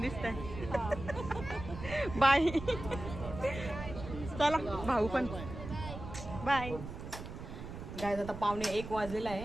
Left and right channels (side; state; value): right; noise; rumble, 9 dB below the sound